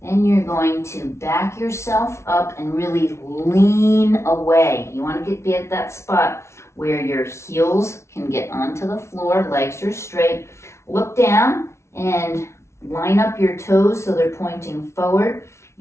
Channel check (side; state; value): right; late; 0.13 ms